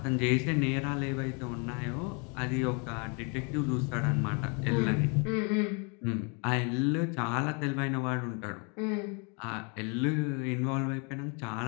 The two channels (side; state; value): right; quieter; 34.7 dB